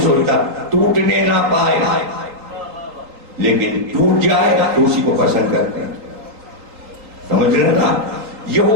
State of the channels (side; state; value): left; late; 3.8 ms